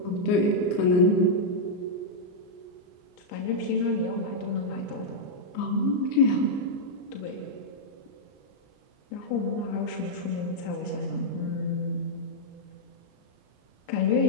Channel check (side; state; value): right; late; 34 ms